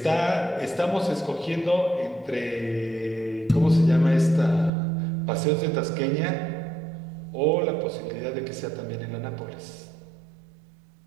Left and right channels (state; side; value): drops out; left; at 4.7 s